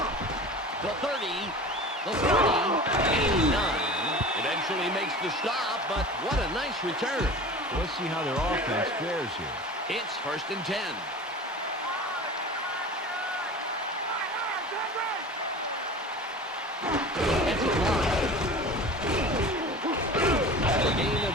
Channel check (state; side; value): normal; both; correlation 0.36